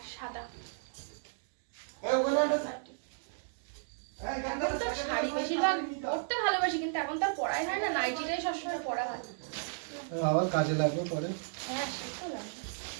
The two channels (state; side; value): silent; left; digital silence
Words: সাদা। এখন তো শাড়ি বেশিরভাগ পরতে ভালোবাসি, কিন্তু এখন তো আর পরাই হয় না, নাইটিটাই সবসময় পরা হয়। আবার কাজে লাগবে পরে। হ্যাঁ সে তো লাগবে।